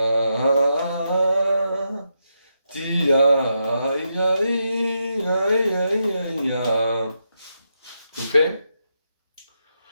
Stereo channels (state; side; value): inverted; both; correlation -0.84